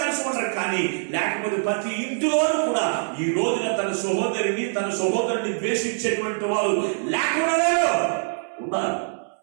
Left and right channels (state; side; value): silent; left; digital silence